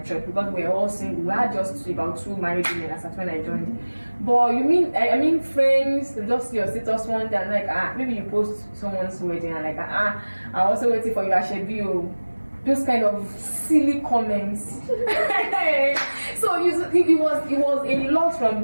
church because we were all single. We had just about 2 married women as at when I joined. But you mean I mean friends, just your status one day and like maybe you post someone's wedding and like I'm also waiting for you at Shebio. Those kind of silly comments. So it was a lot from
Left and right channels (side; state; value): both; inverted; correlation -1.00